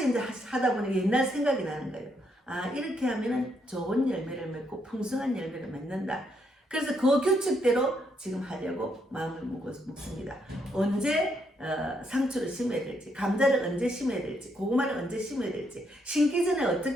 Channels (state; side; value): normal; both; correlation 0.75